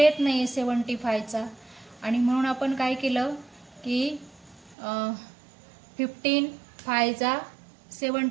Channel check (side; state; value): left; drops out; at 4.8 s